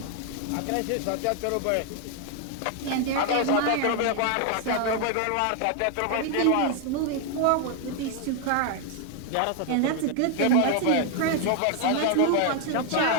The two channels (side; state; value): both; different; correlation 0.00